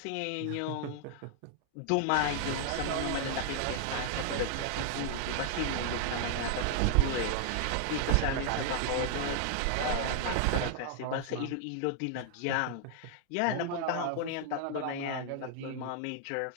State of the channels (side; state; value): both; different; correlation 0.00